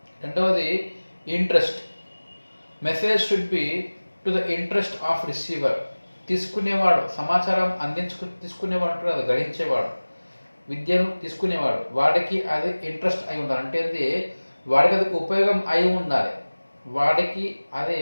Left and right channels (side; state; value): both; inverted; correlation -1.00